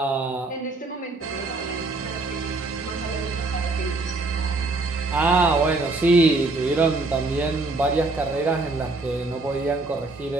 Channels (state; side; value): quieter; left; 3.3 dB